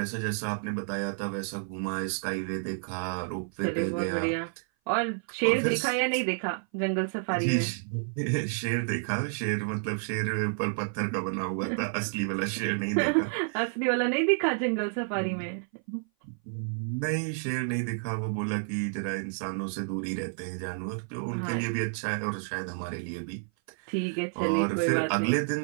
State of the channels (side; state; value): left; silent; 56 dB below the other